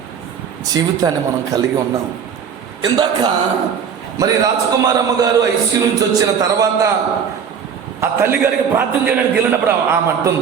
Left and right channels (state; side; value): quieter; left; 7.2 dB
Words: జీవితాన్ని మనం కలిగి ఉన్నాం. ఇందాక మరి రాజకుమారమ్మ గారు ఐసీయూ నుంచి వచ్చిన తర్వాత ఆ తల్లి గారికి ప్రార్థన చేయడానికి వెళ్ళినప్పుడు ఆమె